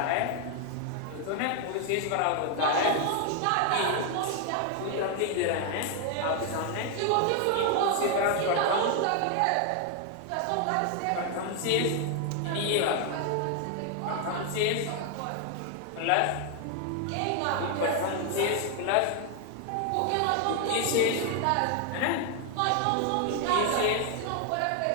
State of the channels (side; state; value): both; different; correlation 0.01